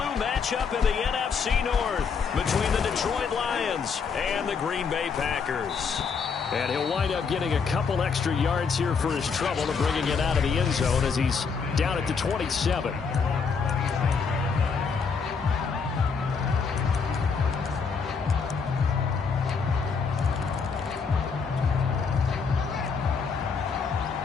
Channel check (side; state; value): right; quieter; 5.6 dB